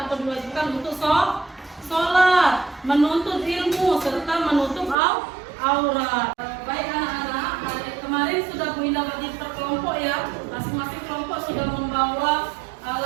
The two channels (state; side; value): drops out; left; at 5.0 s